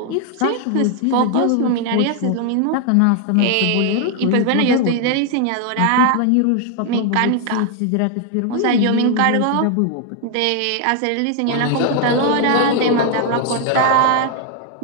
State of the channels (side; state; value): both; different; correlation 0.00